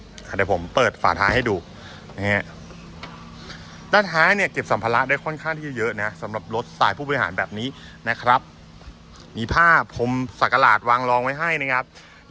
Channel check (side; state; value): both; identical; correlation 1.00